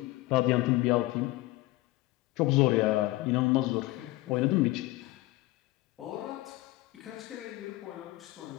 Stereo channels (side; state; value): right; quieter; 19.1 dB